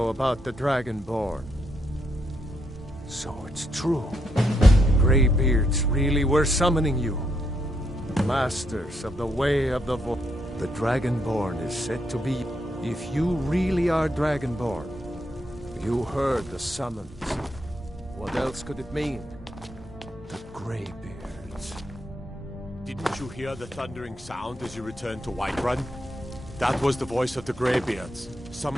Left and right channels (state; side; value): normal; both; correlation 0.78